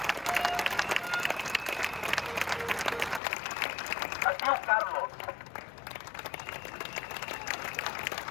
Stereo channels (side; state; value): right; drops out; at 3.2 s